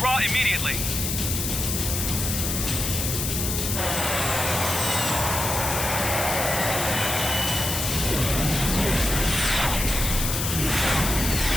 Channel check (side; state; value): left; noise; hiss, 2 dB below the sound